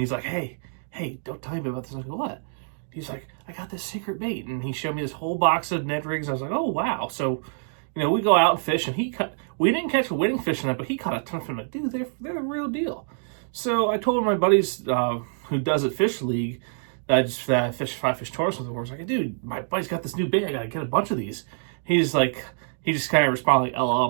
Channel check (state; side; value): silent; left; digital silence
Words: like, hey, don't tell me about this. I was like, what? He's like, I got this secret bait, and he showed me this whole box of Ned Rigs. I was like, oh, wow. So, we go out and fish, and we didn't catch a winning fish in that, but he caught a ton of them. Like, dude, they're the real deal. So I told my buddies who does it fish league that I just fish 5-fish tournaments with. I was like, dude, my buddy's got this new bait. I got to get a bunch of these. He just kind of responded like, LOL.